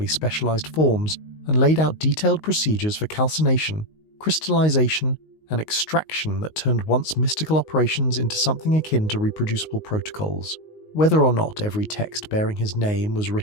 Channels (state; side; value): late; right; 19 ms